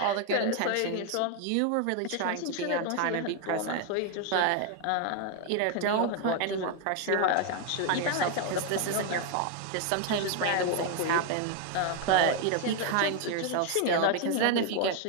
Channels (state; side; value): different; both; correlation 0.01